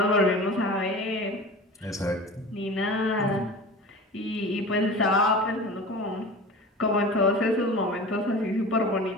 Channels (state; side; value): normal; both; correlation 0.35